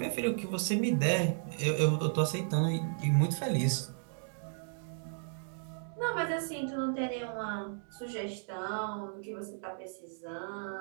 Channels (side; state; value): left; silent; digital silence